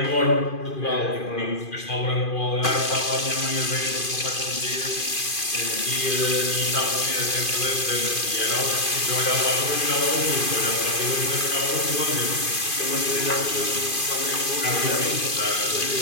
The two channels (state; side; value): late; right; 2.5 ms